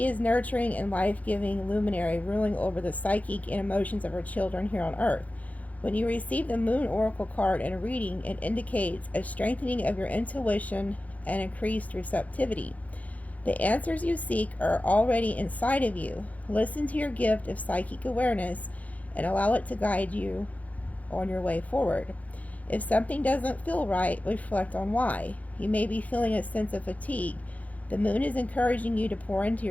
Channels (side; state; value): right; late; 0.072 ms